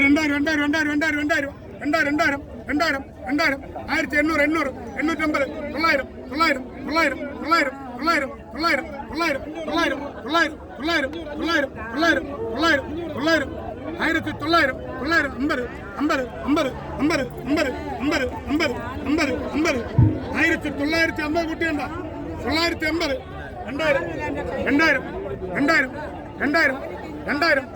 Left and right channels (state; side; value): identical; both; correlation 1.00